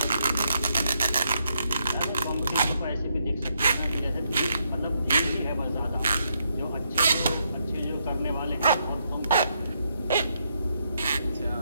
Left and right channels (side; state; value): both; inverted; correlation -0.77